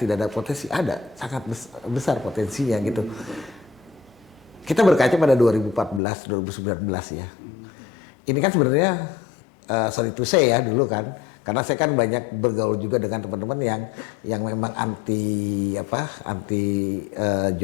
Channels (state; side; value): drops out; right; at 6.0 s